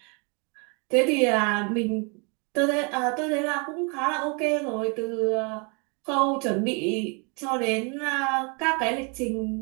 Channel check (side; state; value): left; quieter; 33.5 dB